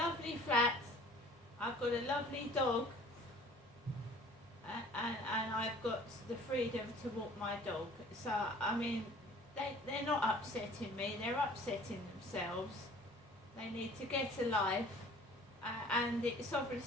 flat. I've got a lovely dog. And I've got the freedom to walk my dog. So, I mean, they're not upsetting me, they're upsetting themselves. They need to get a life, and it's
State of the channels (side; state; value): both; normal; correlation 0.50